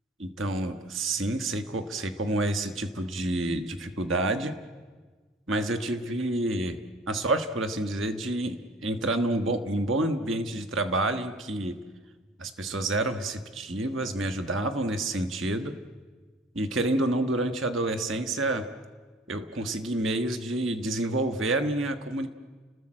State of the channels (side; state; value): both; normal; correlation 0.48